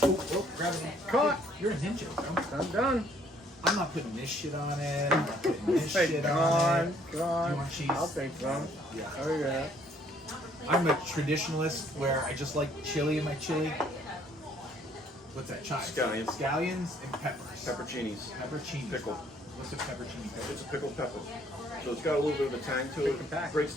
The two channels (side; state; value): both; normal; correlation 0.63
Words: grab it. Caught. You're a ninja, bro. I'm done. I'm not putting this shit on it. I'm not putting this shit on it. Do you want cheese? I'll take some. Yeah. Oh yeah. I'm a traditionalist where I just like chili in my chili. What's that? Chives. Scallions. Scallions and peppers. Pepperoncinis. Peppercini. Pickled. What's a peppercini pepper? It's a pickled pepper. So it's got a little bit of a tang to it. Breaks